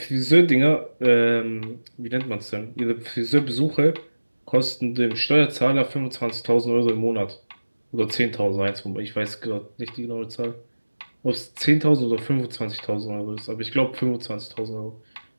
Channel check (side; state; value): both; inverted; correlation -1.00